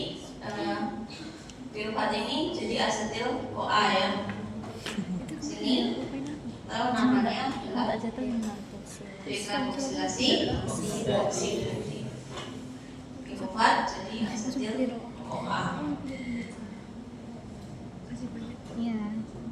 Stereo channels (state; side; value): identical; both; correlation 1.00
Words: pirufat ini jadi asetil CoA ya. Sini tahu namanya adalah dekarboksilasi oksidasi. Pirufat jadi asetil CoA. Iya.